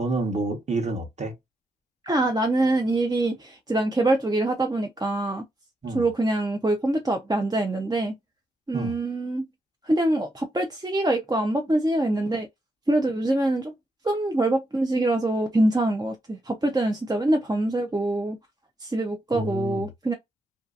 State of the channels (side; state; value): both; normal; correlation 0.82